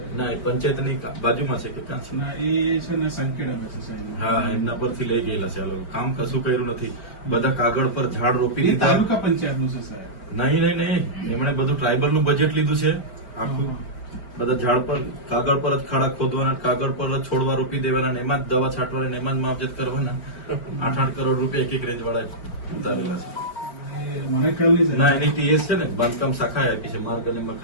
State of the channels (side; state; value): right; late; 4.4 ms